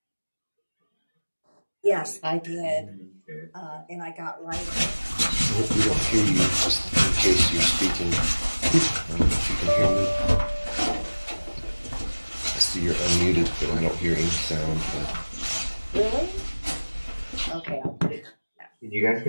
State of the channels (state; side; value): inverted; both; correlation -1.00